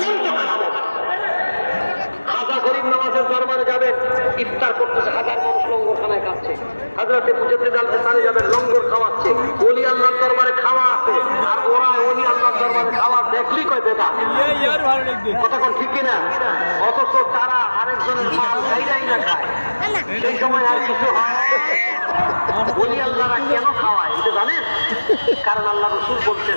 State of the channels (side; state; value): both; inverted; correlation -1.00